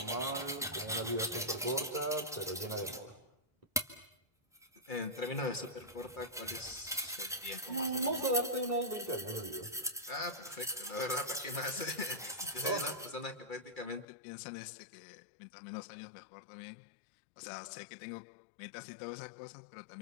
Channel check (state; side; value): drops out; right; at 14.1 s